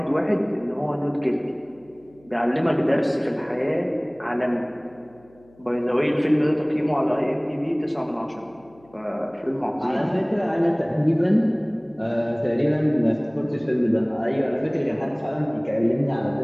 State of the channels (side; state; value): left; noise; hum, 28 dB below the sound